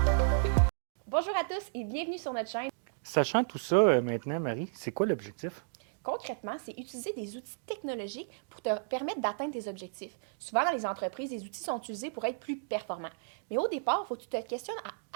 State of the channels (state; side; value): silent; left; digital silence